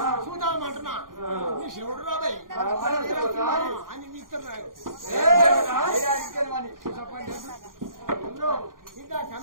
చూద్దామంటున్నా నీ శివుడు రాబాయి అని ఇస్తున్నారు ఇంకా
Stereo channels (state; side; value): late; left; 0.90 ms